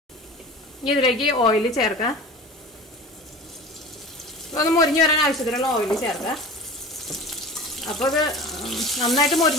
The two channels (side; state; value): both; normal; correlation 0.36